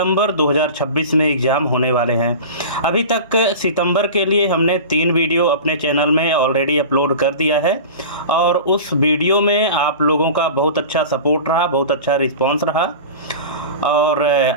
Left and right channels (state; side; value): inverted; both; correlation -0.34